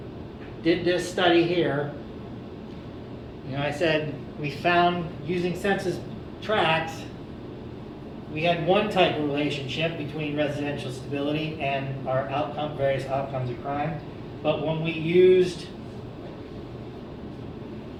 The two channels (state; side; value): identical; both; correlation 1.00